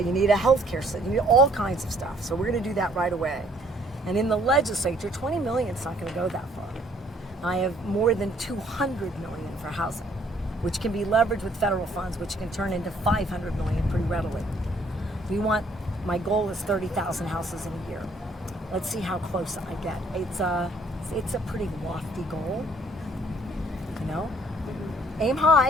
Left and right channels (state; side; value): normal; both; correlation 0.62